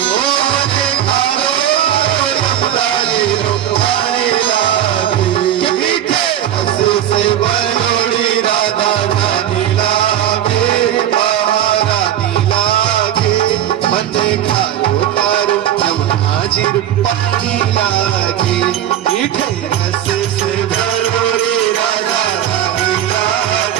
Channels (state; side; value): quieter; left; 11.0 dB